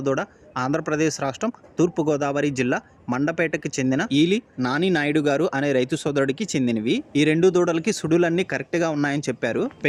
ఆంధ్రప్రదేశ్ రాష్ట్రం తూర్పుగోదావరి జిల్లా మండపేటకి చెందిన ఈలి నాని నాయుడు గారు అనే రైతు సోదరుడికి చెందినవి. ఈ రెండు దూడలకి సుడులన్నీ కరెక్ట్గా ఉన్నాయని చెప్పారు.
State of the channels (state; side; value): identical; both; correlation 1.00